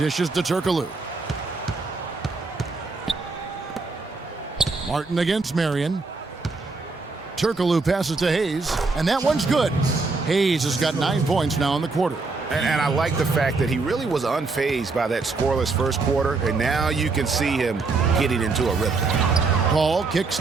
to Turkoglu. Martin against Marion. Turkoglu passes to Hayes, and that one's good. Hayes has got 9 points now in the quarter. And I like the fact that he really was unfazed by that scoreless first quarter, and now you can see him getting into a rhythm. Paul kicks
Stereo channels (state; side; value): quieter; left; 3.9 dB